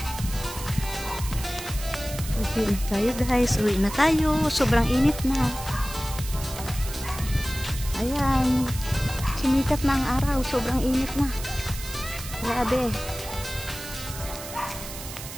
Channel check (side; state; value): right; noise; hiss, 11 dB below the sound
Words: Uwi na tayo guys, uwi na tayo. Sobrang init na. Ayan, sumikat na ang araw. Sobrang init na. Grabe.